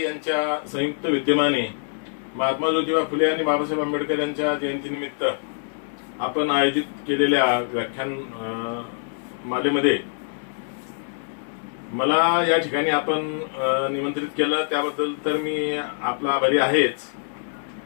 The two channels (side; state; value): right; silent; digital silence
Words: यांच्या संयुक्त विद्यमाने महात्मा ज्योतिबा फुले आणि बाबासाहेब आंबेडकर यांच्या जयंतीनिमित्त आपण आयोजित केलेल्या व्याख्यान मालेमध्ये मला या ठिकाणी आपण निमंत्रित केलं, त्याबद्दल तर मी आपला आभारी आहेच.